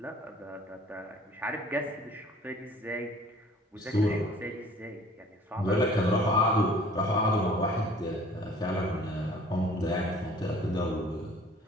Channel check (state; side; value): normal; both; correlation 0.51